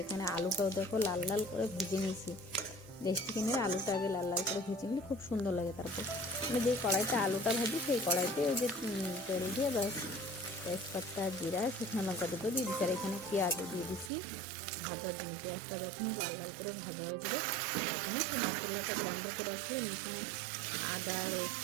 এখানে আলুটাও দেখো লাল লাল করে ভেজে নিয়েছি। দেশি চিকেনের আলুটা আগে লাল লাল করে ভেজে নিলে খুব সুন্দর লাগে। তারপর আমি যেই কড়াইতে আলুটা ভাজি সেই কড়াইতে ওই যে তেল দিয়ে বাস তেজপাতা, জিরা, শুকনো লঙ্কা দুটো দিয়ে দিচ্ছি। আর এখানে পেঁয়াজও দিয়ে দিচ্ছি ভাজার জন্য। পেঁয়াজটা যখন লাল লাল করে ভাজা হয়ে যাবে তখন সব মশলাটা গ্রাইন্ডার করে আসছিলাম। এখানে আদা,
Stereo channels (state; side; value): drops out; left; at 14.1 s